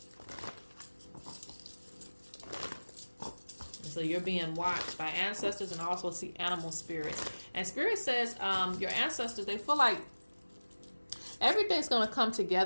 So you're being watched by ancestors, and also see animal spirits. And Spirit says your ancestors, they feel like everything's going to come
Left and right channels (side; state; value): both; inverted; correlation -1.00